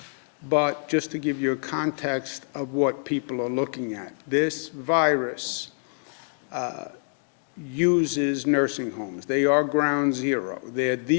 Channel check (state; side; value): silent; right; digital silence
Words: but just to give you a context of what people are looking at. This virus uses nursing homes. They are ground zero. They're